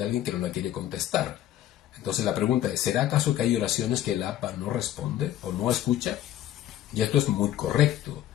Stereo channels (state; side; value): quieter; right; 12.4 dB